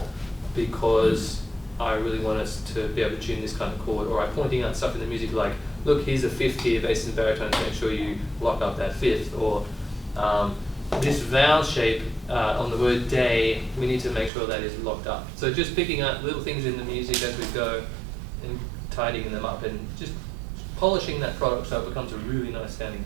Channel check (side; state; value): left; drops out; at 14.3 s